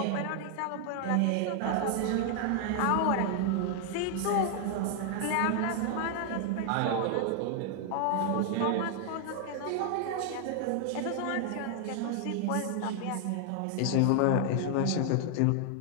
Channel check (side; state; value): both; different; correlation 0.00